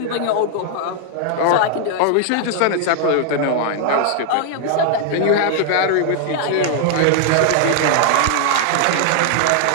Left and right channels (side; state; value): both; different; correlation 0.00